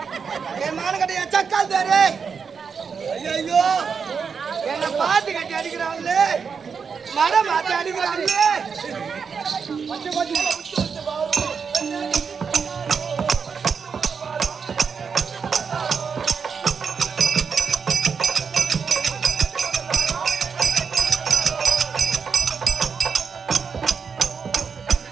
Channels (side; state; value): left; quieter; 6.0 dB